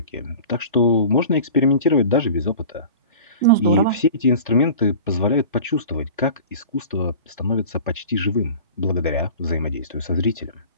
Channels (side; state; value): both; inverted; correlation -0.40